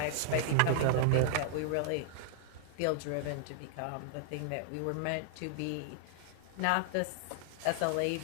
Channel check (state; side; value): different; both; correlation -0.01